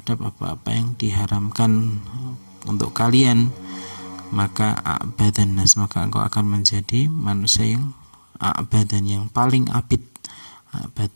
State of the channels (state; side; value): inverted; both; correlation -1.00